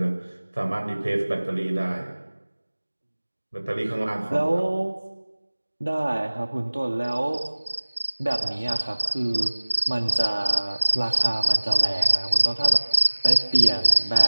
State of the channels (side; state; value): both; inverted; correlation -1.00